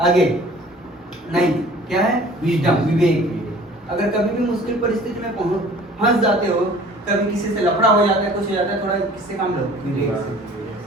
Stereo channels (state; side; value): normal; both; correlation 0.49